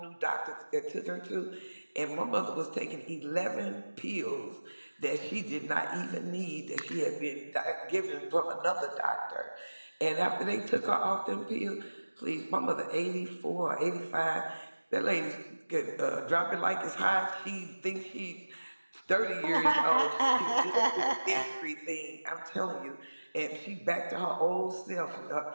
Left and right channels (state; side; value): inverted; both; correlation -1.00